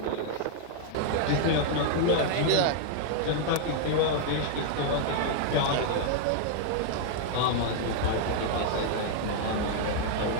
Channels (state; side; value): different; both; correlation -0.01